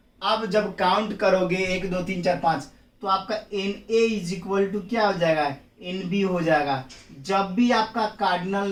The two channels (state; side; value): identical; both; correlation 1.00